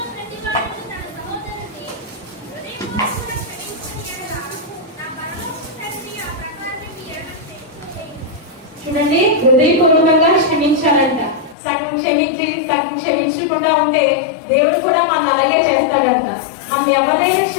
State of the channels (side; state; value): right; drops out; at 11.6 s